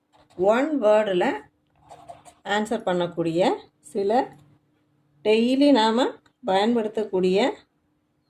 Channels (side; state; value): both; identical; correlation 1.00